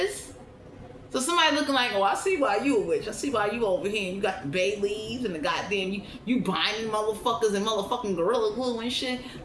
is? So somebody looking like, oh, I see why you a witch. I see why you over here and you got the bay leaves and the goddamn, you binding motherfuckers and motherfucking gorilla glue and shit.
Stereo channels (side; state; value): both; identical; correlation 1.00